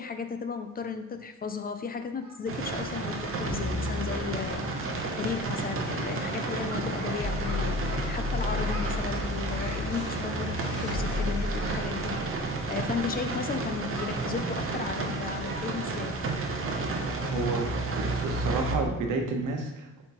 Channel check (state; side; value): normal; both; correlation 0.38